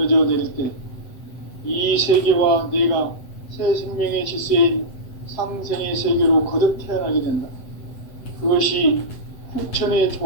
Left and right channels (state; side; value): late; right; 7.9 ms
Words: 내릴 때 이 세계와 내가 새 생명의 질서인 상생의 세계로 거듭 태어나게 된다. 그것이 후천의